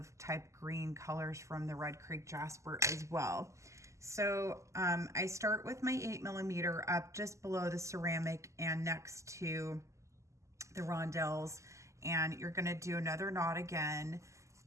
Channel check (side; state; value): left; late; 0.15 ms